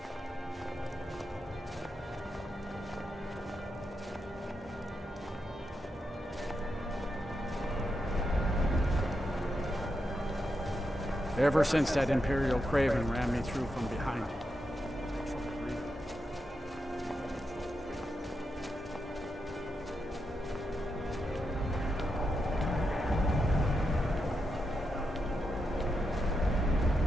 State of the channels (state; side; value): normal; both; correlation 0.85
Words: Ever since that Imperial Craven ran me through from behind.